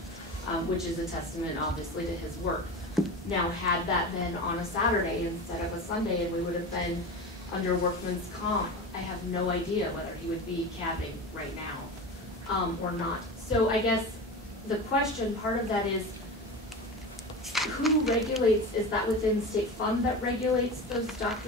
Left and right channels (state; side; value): normal; both; correlation 0.28